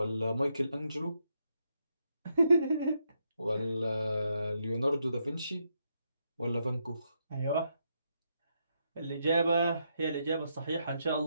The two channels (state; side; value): inverted; both; correlation -0.80